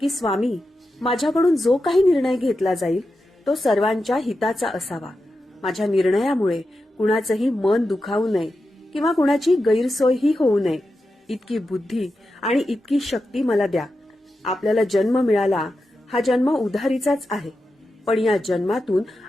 स्वामी, माझ्याकडून जो काही निर्णय घेतला जाईल तो सर्वांच्या हिताचा असावा. माझ्या निर्णयामुळे कुणाचंही मन दुखावू नये किंवा कुणाची गैरसोयही होऊ नये. इतकी बुद्धी आणि इतकी शक्ती मला द्या. आपल्याला जन्म मिळाला, हा जन्म उधारीचाच आहे, पण या जन्मातून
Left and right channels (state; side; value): normal; both; correlation 0.90